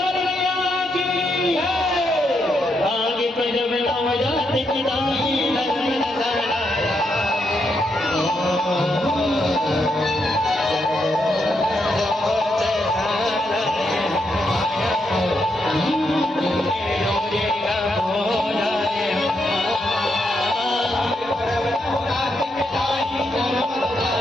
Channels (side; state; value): both; normal; correlation 0.80